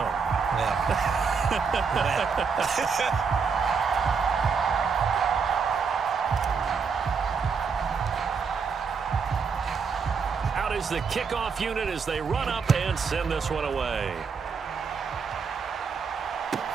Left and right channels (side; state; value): left; quieter; 5.6 dB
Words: Yeah. Is the kickoff unit as they run up and send this one away.